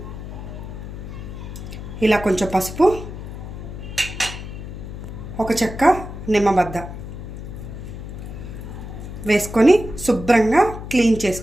ఇలా కొంచెం పసుపు, ఒక చెక్క నిమ్మబద్ద వేసుకొని శుభ్రంగా క్లీన్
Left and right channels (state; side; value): noise; left; hum, 9 dB below the sound